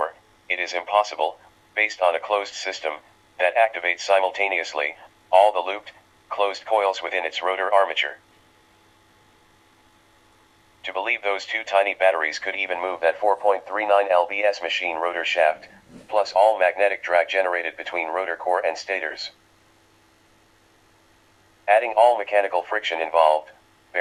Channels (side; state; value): both; identical; correlation 1.00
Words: it is impossible, based on a closed system, that activates simultaneously, all the looped, closed coils within its rotor armature. To believe those two tiny batteries could even move that 4.39 lbs machine rotor shaft, plus all magnetic drag generated between rotor core and stators. Adding all mechanical friction involved,